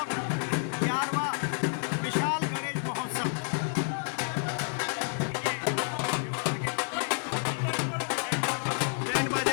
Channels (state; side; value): silent; right; 58 dB below the other